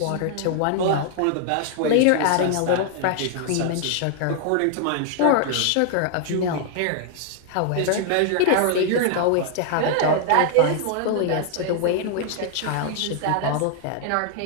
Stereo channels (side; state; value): both; different; correlation 0.00